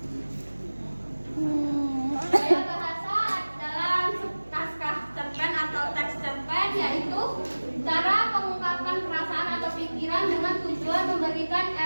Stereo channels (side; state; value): both; inverted; correlation -1.00